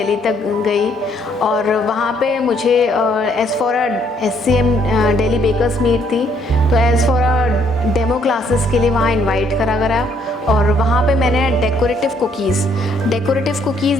तक गई। और वहाँ पे मुझे as for SCM Delhi bakers meet थी, तो एज़ फॉर डेमो क्लासेस के लिए वहाँ इनवाइट करा गया। और वहाँ पे मैंने डेकोरेटिव कुकीज़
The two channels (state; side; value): normal; both; correlation 0.68